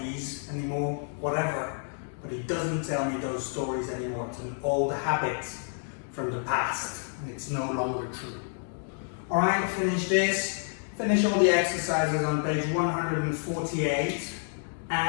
anymore, whatever. But he doesn't tell me those stories anymore. It's an old habit from the past. And it's no longer true. Alright, finish this. Finish all the exercises on page 148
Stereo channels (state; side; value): silent; right; 59 dB below the other